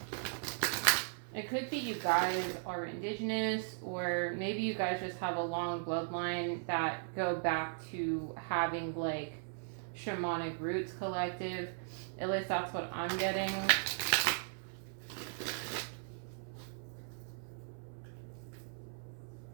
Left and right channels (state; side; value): silent; left; 53 dB below the other